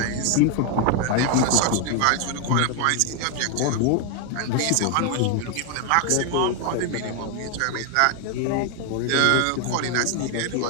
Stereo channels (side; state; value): both; different; correlation 0.01